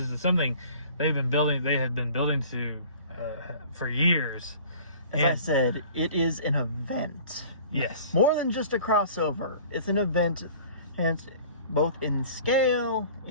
something they had been building to for years. As I said, it is an event. Yes. More than just a crossover. It's an event, and both in scale,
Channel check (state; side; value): inverted; both; correlation -0.47